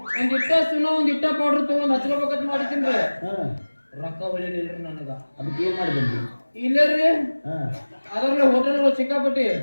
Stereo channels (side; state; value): both; inverted; correlation -1.00